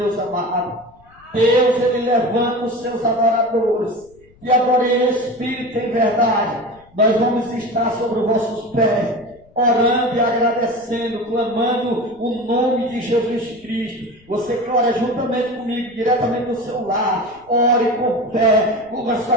amado. Deus, Ele levanta os seus adoradores, e adorem em espírito e em verdade. Nós vamos estar sobre os vossos pés, orando e agradecendo, clamando o nome de Jesus Cristo. Você que ora juntamente comigo, diretamente no seu lar, ore com fé, curva a sua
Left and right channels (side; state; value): left; noise; rumble, 29 dB below the sound